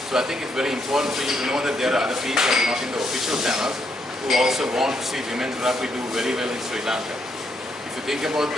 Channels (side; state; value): both; normal; correlation 0.76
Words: So I think it's very important for you to know that there are other people not in the official channels who also want to see women's rugby do very well in Sri Lanka. If you think about